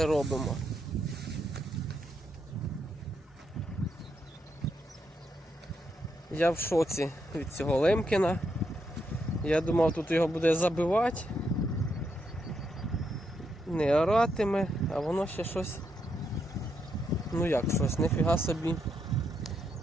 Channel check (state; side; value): normal; both; correlation 0.80